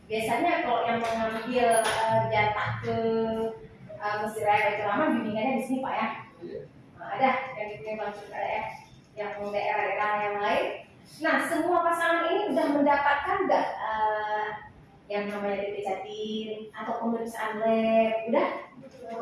Biasanya kalau yang mengambil jatah ke Masjid Raya Baitur Rahman bimbingannya di sini, Pak, ya. Nah, ada yang punya Bangcut ada, ya. Yang daerah-daerah yang lain. Nah, semua pasangan ini sudah mendapatkan nggak yang namanya DP Jatim atau pemeriksaan lab? Udah?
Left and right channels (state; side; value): identical; both; correlation 1.00